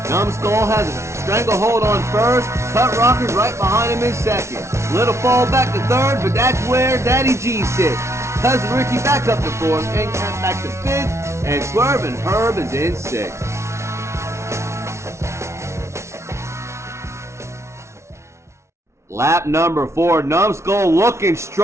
Numbskull has a stranglehold on first. Cut Rocker's right behind him in second. Little fall back to third, but that's where Daddy G sits. Cousin Ricky back up to fourth, End Count back to fifth, and Swervin' Herb is in sixth. Lap number 4, Numbskull looking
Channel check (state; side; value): late; left; 0.13 ms